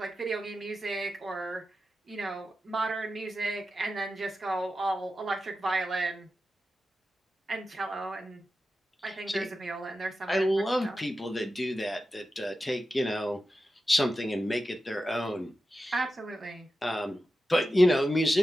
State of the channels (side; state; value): both; normal; correlation 0.91